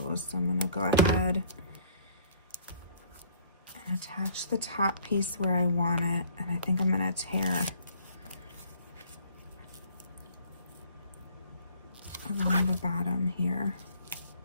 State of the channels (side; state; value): both; inverted; correlation -0.57